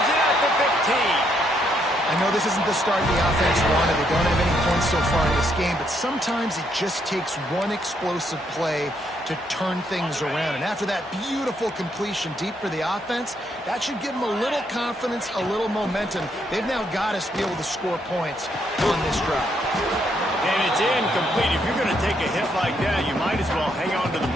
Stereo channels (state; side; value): normal; both; correlation 0.74